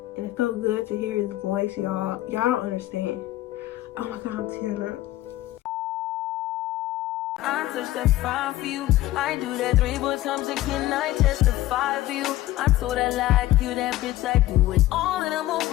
And it felt good to hear his voice, y'all. Y'all don't understand. Oh my God, I'm tearing up. I touch that 5 for you. I do that 3 but times again. I testify for you. I told I like you, that bitch. I do it all and I'm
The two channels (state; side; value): quieter; right; 15.6 dB